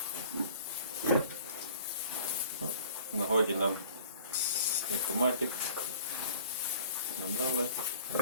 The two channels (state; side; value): inverted; both; correlation -0.50